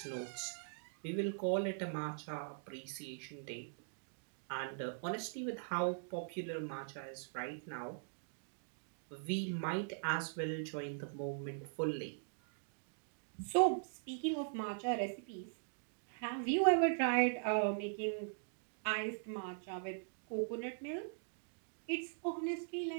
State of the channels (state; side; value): silent; left; digital silence